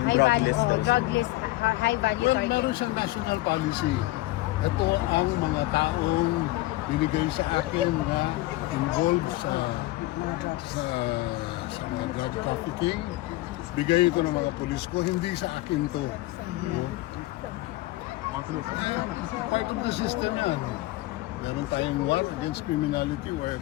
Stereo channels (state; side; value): quieter; right; 18.5 dB